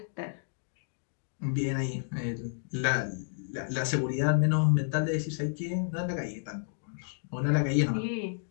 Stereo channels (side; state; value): right; silent; digital silence